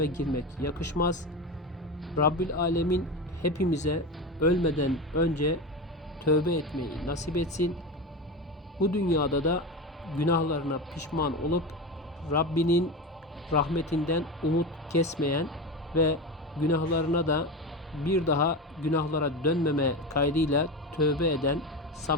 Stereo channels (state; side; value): normal; both; correlation 0.22